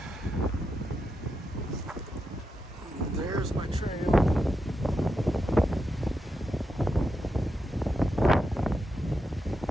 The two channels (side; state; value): both; normal; correlation 0.86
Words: There's my trail.